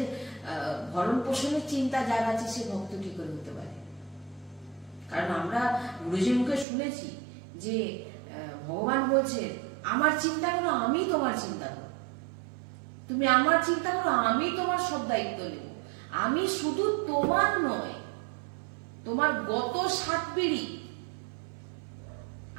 ভরণ পোষণের চিন্তা যার আছে, সে ভক্ত কি করে হতে পারে? কারণ আমরা গুরুজির মুখে শুনেছি যে ভগবান বলছে, আমার চিন্তা করো, আমি তোমার চিন্তা করো, তুমি আমার চিন্তা করো, আমি তোমার সব দায়িত্ব নেব। আমি শুধু তোমার নয়, তোমার গত 7 পিঢ়ি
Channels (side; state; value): left; drops out; at 6.7 s